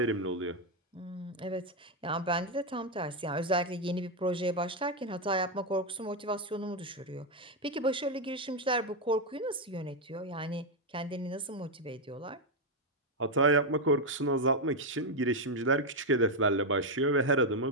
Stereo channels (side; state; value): both; normal; correlation 0.03